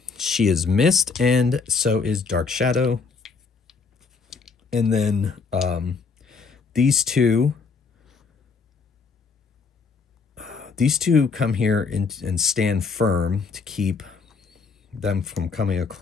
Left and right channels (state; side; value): quieter; right; 5.0 dB